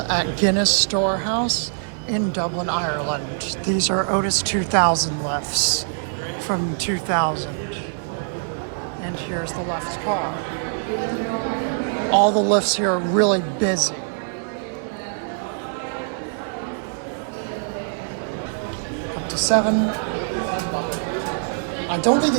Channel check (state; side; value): silent; left; 58 dB below the other